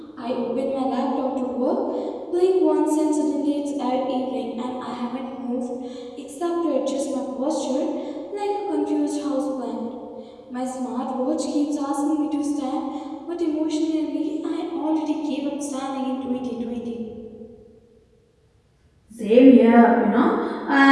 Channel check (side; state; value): both; identical; correlation 1.00